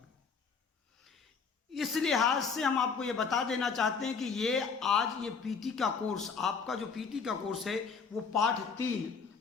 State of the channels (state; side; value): quieter; right; 5.4 dB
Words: इस लिहाज से हम आपको ये बता देना चाहते हैं कि ये पीटी का कोर्स, आपका जो पीटी का कोर्स है वो पाठ 3